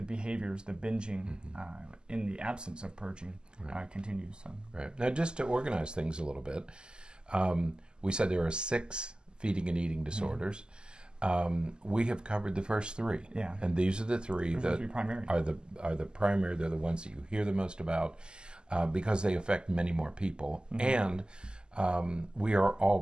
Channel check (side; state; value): left; late; 0.047 ms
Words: behaviors, the binging, in the absence of purging, continues. So. Right. Now, just to organize things a little bit, we said there are 6 feeding and eating disorders. We have covered the first 3. Yeah. And these are the 3 that primary. are the primary. They're the ones that you hear the most about. because they affect many more people, and we are